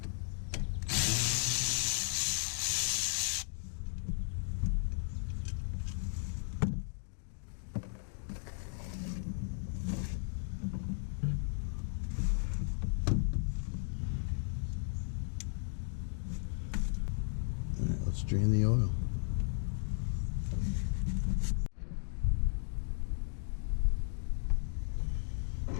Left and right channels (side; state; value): right; silent; digital silence